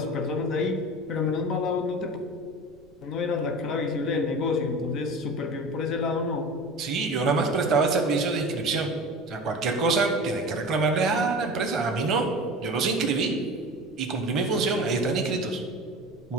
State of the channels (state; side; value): noise; right; rumble, 29 dB below the sound